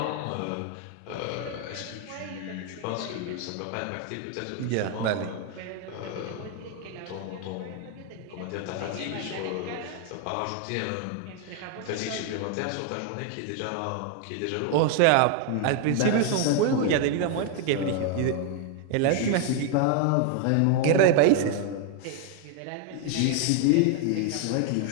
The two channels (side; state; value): both; different; correlation 0.01